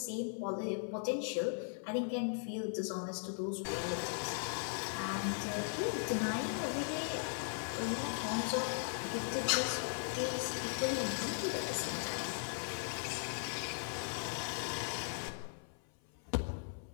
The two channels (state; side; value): silent; right; 52 dB below the other